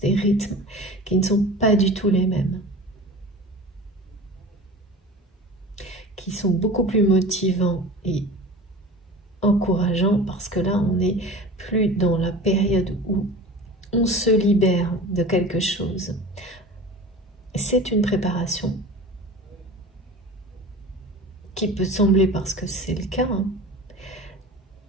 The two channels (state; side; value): normal; both; correlation 0.37